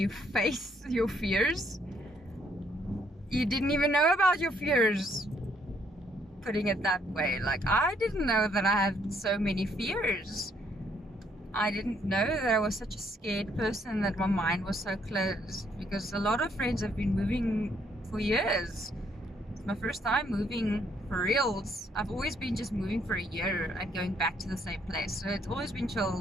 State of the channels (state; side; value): normal; both; correlation 0.69